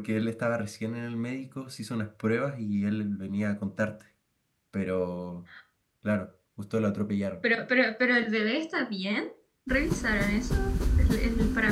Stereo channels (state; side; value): identical; both; correlation 1.00